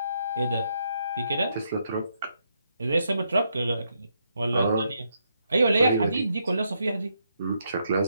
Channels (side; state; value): both; inverted; correlation -0.78